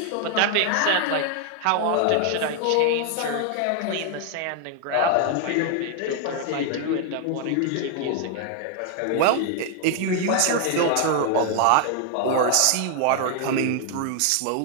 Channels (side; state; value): both; different; correlation 0.00